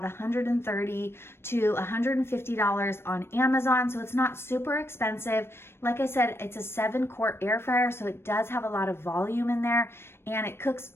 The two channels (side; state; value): right; late; 0.12 ms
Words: $130 to $150 on Amazon, so it's not super expensive. Like I said, it's a 7-quart air fryer, so it does have a lot of volume in there, and it cooks